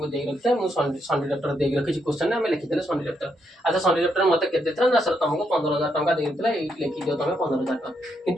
दे रखी मुझे संडे डॉक्टर दे रखी क्वेश्चन आम लिखिदे संडे डॉक्टर अच्छा संडे डॉक्टर मत के ना सर तुमको 15,000 टका देता ये लिखी दियो तुम 15,000 टका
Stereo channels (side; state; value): both; normal; correlation 0.78